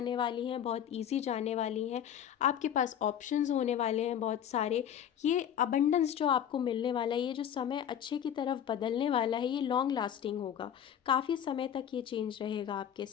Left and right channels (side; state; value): right; quieter; 9.6 dB